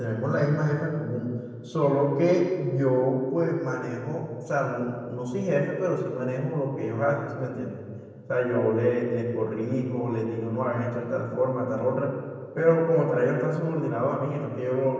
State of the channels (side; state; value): both; identical; correlation 1.00